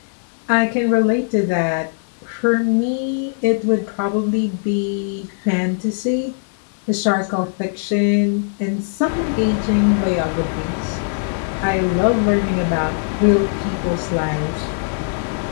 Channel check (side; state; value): right; silent; 61 dB below the other